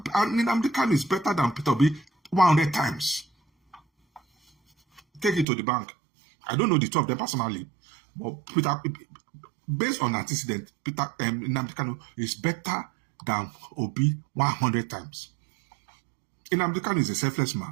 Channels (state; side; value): drops out; left; at 5.5 s